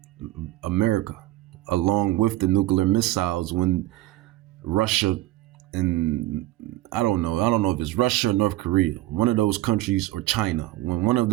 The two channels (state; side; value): quieter; left; 16.6 dB